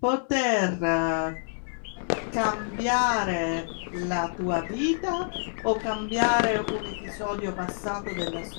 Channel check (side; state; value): right; silent; digital silence